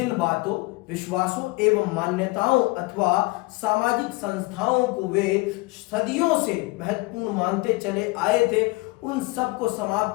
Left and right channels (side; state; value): right; quieter; 23.8 dB